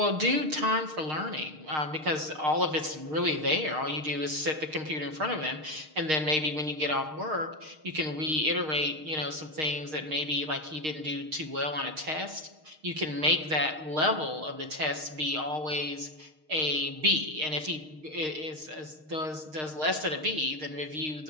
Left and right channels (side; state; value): left; late; 6.5 ms